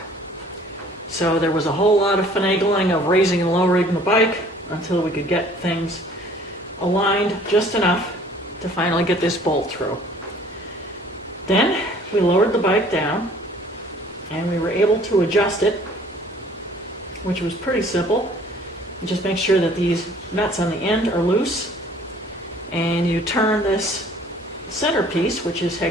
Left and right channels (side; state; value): both; normal; correlation 0.54